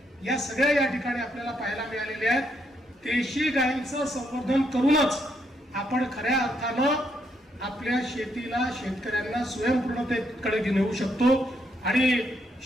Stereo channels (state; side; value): normal; both; correlation 0.76